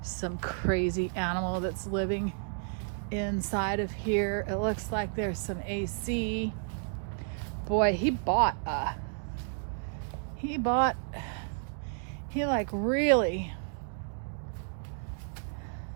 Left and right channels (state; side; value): silent; left; digital silence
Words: Some crazy animal that's living inside of here. It looks like there's some AC. Boy, he like really,